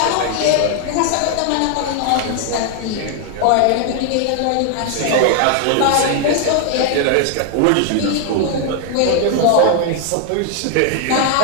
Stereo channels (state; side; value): different; both; correlation 0.00